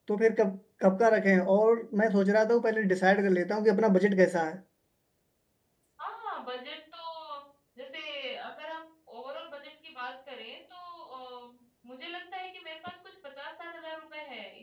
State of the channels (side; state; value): both; identical; correlation 1.00